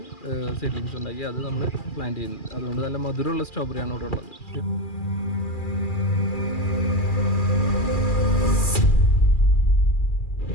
സീഡ്ലിങ്സ് ഉണ്ടാക്കി അത് നമ്മൾ പ്ലാന്റ് ചെയ്യുന്നത്. അതുകൊണ്ട് നല്ല മധുരമുള്ള സ്ട്രോബെറിയാണ് ഇവിടെ ഉള്ളത്.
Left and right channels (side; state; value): right; late; 2.4 ms